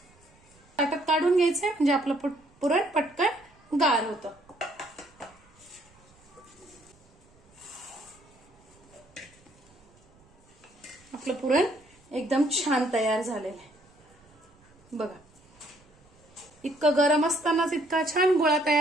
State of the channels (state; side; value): noise; right; rumble, 30 dB below the sound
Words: ताटात काढून घ्यायचंय म्हणजे आपलं पुरण पटकन गार होतं. आपलं पुरण एकदम छान तयार झालेलं आहे. बघा, इतकं गरम असतानाच इतका छान गोळा